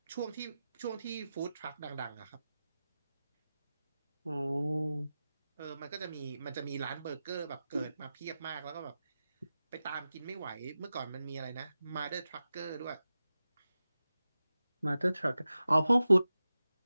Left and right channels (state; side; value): inverted; both; correlation -0.93